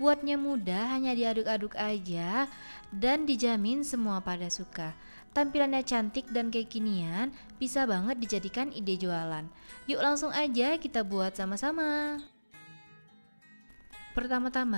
mudah, hanya diaduk-aduk aja dan dijamin semua pada suka. Tampilannya cantik dan kekinian, bisa banget dijadikan ide jualan. Yuk langsung aja kita buat sama-sama.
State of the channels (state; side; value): inverted; both; correlation -1.00